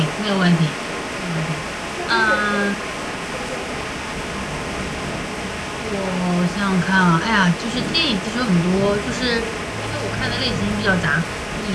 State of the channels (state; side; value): identical; both; correlation 1.00